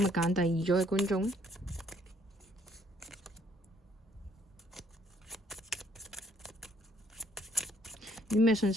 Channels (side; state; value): both; normal; correlation 0.65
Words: 日揀第二組嘅觀眾呢？有啲咩信